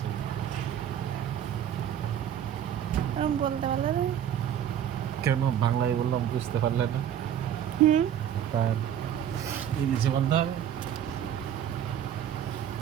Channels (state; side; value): quieter; left; 10.0 dB